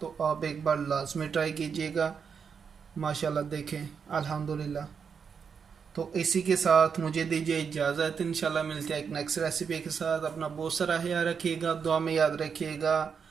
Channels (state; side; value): quieter; left; 6.4 dB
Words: आप एक बार लाजमी ट्राई कीजिएगा। माशाल्लाह देखें अल्हम्दुलिल्लाह। तो इसी के साथ मुझे दीजिए इजाज़त। इंशाल्लाह मिलते हैं एक नेक्स्ट रेसिपी के साथ। अपना बहुत सारा ख्याल रखिएगा, दुआ में याद रखिएगा।